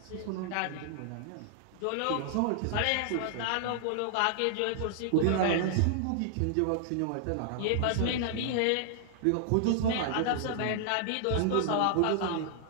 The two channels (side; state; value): both; different; correlation -0.01